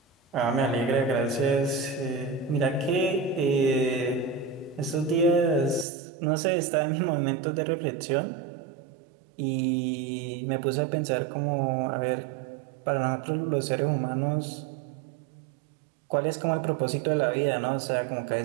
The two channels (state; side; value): drops out; left; at 5.9 s